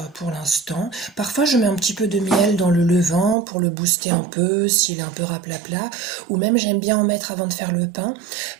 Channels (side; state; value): left; drops out; at 3.4 s